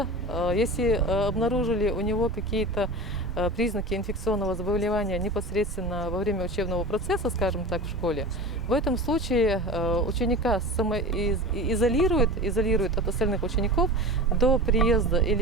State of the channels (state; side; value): normal; both; correlation 0.32